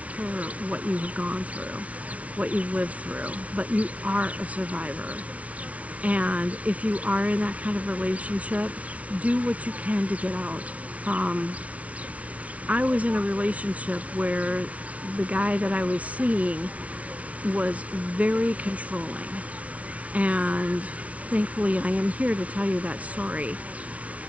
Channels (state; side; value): late; left; 0.066 ms